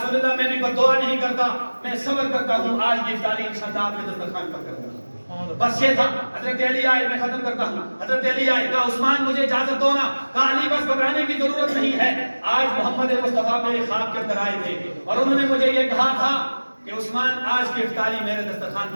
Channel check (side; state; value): both; inverted; correlation -1.00